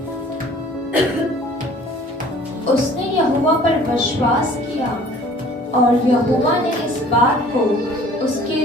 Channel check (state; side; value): normal; both; correlation 0.51